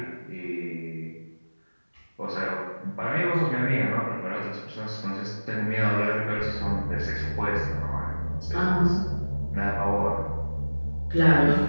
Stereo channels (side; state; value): both; inverted; correlation -1.00